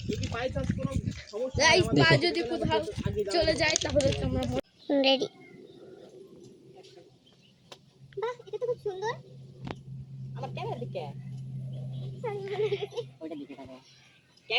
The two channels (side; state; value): both; identical; correlation 1.00